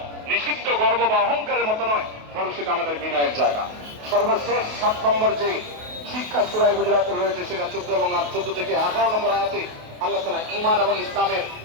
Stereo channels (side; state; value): left; late; 28 ms